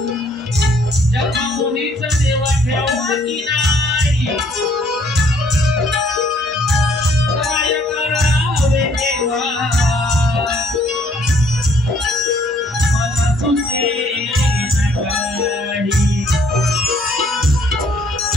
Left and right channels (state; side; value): normal; both; correlation 0.63